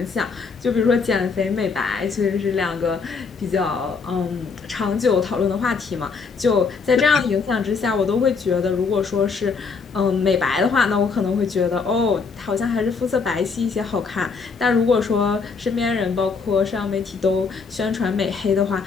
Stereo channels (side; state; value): right; quieter; 5.0 dB